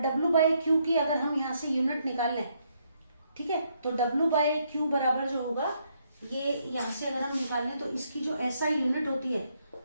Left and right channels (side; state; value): both; inverted; correlation -0.74